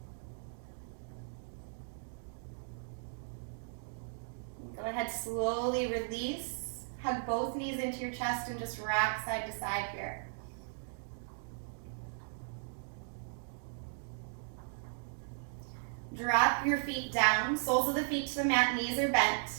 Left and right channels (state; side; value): silent; left; digital silence